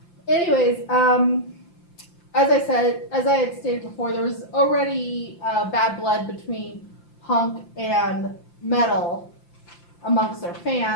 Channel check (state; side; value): late; right; 5.8 ms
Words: Anyways, as I had stated before, there was already bad blood between punk and metal amongst their